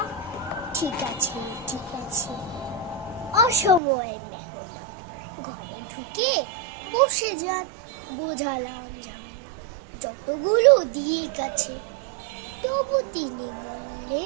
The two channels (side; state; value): left; drops out; at 3.8 s